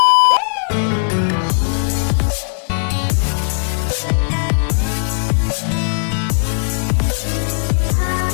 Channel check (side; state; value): right; silent; digital silence